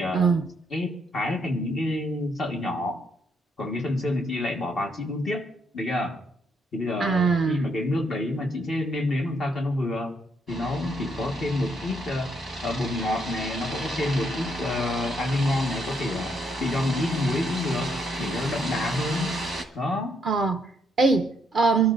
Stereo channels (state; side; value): normal; both; correlation 0.73